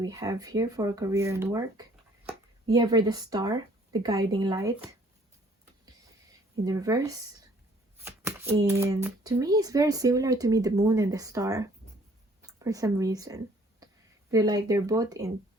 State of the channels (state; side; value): normal; both; correlation 0.59